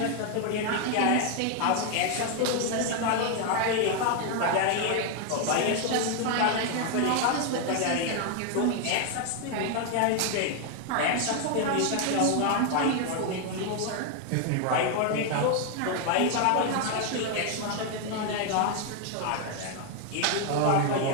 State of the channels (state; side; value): different; both; correlation 0.01